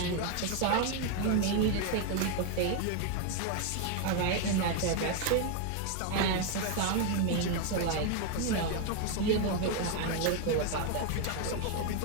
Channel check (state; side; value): different; both; correlation 0.01